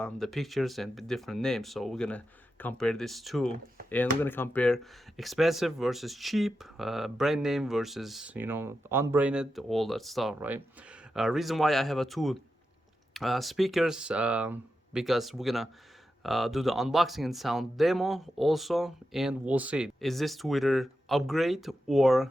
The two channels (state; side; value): normal; both; correlation 0.89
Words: pictures and the different names. So we're gonna compare these two, and we're gonna compare expensive versus cheap, brand name versus unbranded, all that stuff, right? Reason why I have a two speakers, because we're gonna do the unboxing and sound demo also, and we'll see is this tweeter upgrade or